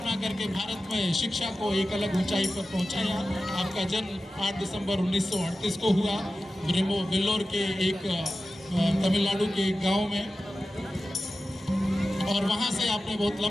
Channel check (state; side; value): normal; both; correlation 0.94